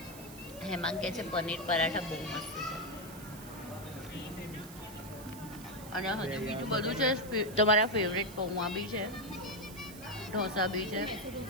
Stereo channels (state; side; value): noise; right; hiss, 16 dB below the sound